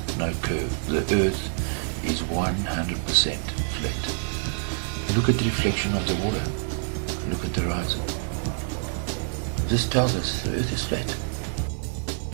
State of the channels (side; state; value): left; silent; digital silence